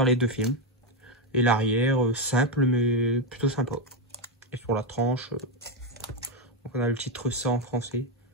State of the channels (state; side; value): normal; both; correlation 0.06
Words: les deux films. Et l'arrière, simple mais plutôt sympa. Et sur la tranche, donc on a le titre ça en français.